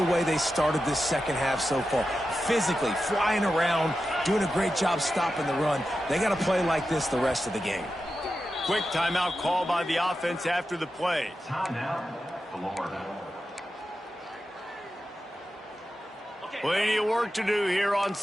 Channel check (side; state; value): both; normal; correlation 0.91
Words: way they started this second half so far. Physically, flying around, doing a great job stopping the run. They got to play like this the rest of the game. Quick timeout call by the offense after the play. Timeout, Florida. Plenty of work to do here on